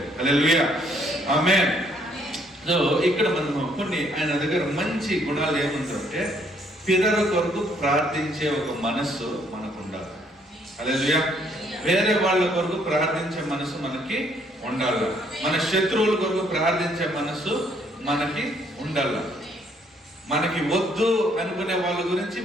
హల్లెలూయా. ఆమేన్. సో ఇక్కడ మనం కొన్ని ఆయన దగ్గర మంచి గుణాలు ఏముందంటే, పితరుల కొరకు ప్రార్థించే ఒక మనస్సు మనకు ఉండాలి. హల్లెలూయా. వేరే వాళ్ళ కొరకు ప్రార్థించే మనసు మనకి ఉండాలి. మన శత్రువుల కొరకు ప్రార్థించే మనసు మనకి ఉండాలి. మనకి వద్దు అనుకునే వాళ్ళ గురించి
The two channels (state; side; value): normal; both; correlation 0.67